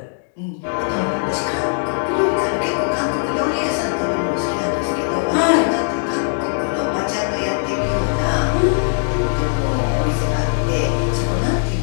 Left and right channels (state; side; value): silent; right; 66 dB below the other